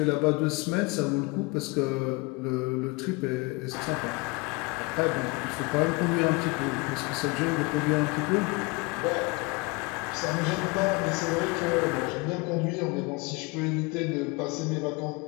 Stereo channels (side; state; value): right; quieter; 26.2 dB